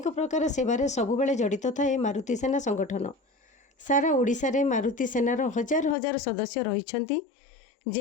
प्रकार सेवारे सबुबेले जड़ित थाए मारुति सेना संगठन। सारा ओडिशा रे मारुति सेनार हजार हजार सदस्य रहिछंती,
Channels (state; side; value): drops out; right; at 6.0 s